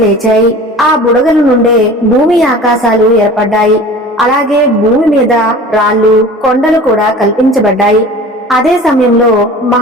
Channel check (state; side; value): normal; both; correlation 0.41